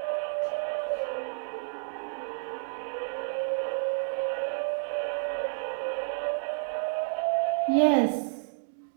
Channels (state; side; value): silent; left; digital silence